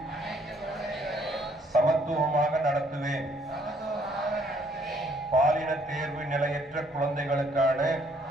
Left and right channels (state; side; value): normal; both; correlation 0.65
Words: சமத்துவமாக நடத்துவேன். பாலின தேர்வு நிலையற்ற குழந்தைகளுக்கான